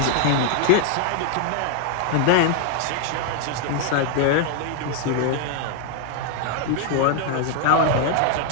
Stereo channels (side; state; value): both; different; correlation 0.00